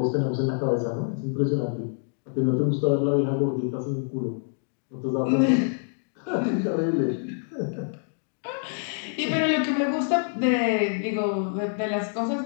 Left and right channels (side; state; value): right; silent; digital silence